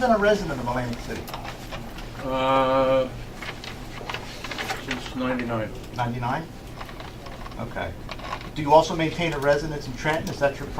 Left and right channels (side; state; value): both; identical; correlation 1.00